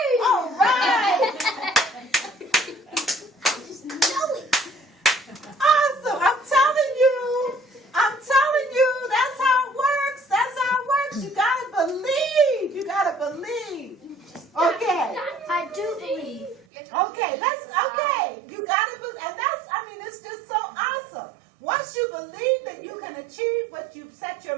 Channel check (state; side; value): drops out; left; at 16.7 s